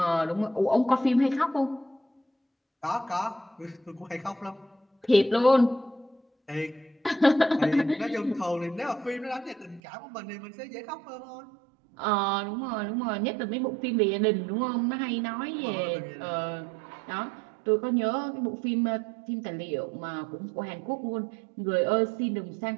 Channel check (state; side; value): drops out; left; at 9.8 s